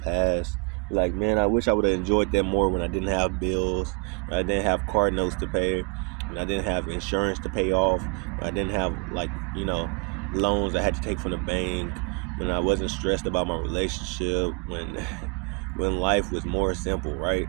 like, man, I wish I would have enjoyed that more when I didn't have bills, when I didn't have car notes to pay, when I didn't have insurance to pay off, when I didn't have, like, loans I had to take from the bank, when I wasn't stressed about my relationship, when life was more simple, right?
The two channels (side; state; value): left; quieter; 33.1 dB